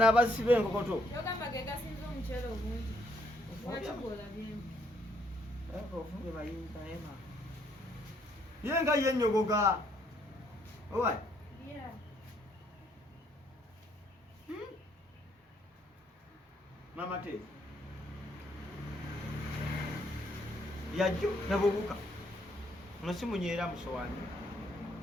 abasiba enkokoto yenga yenyogoga owai mama te yajjo nabubuka nosimunyera musowani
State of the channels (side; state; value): both; normal; correlation 0.69